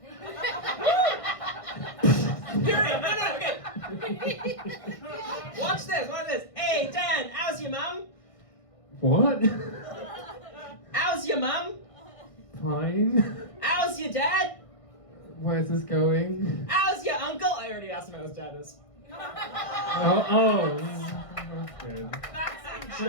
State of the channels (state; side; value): late; right; 1.6 ms